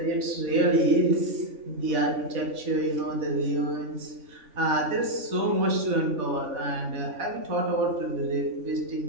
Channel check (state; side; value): late; left; 3.5 ms